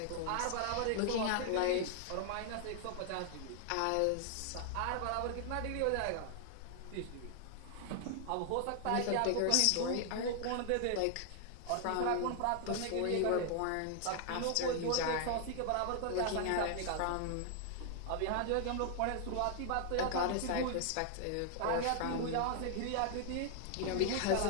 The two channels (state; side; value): different; both; correlation 0.00